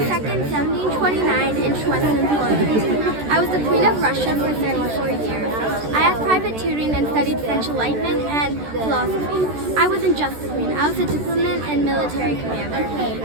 1729 in Schwetzen, Poland. I was the Queen of Russia for 34 years. I had private tutoring and studied French Enlightenment and philosophy. I wasn't just the Queen, I was a diplomat and military commander.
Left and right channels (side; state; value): left; late; 14 ms